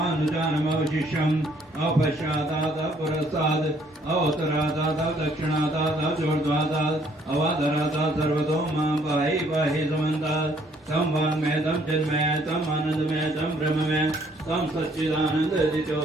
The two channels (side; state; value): both; normal; correlation 0.64